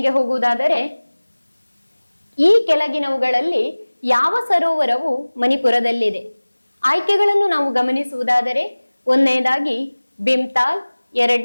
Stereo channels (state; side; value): inverted; both; correlation -1.00